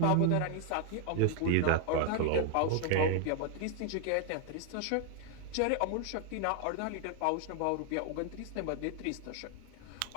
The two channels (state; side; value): different; both; correlation 0.00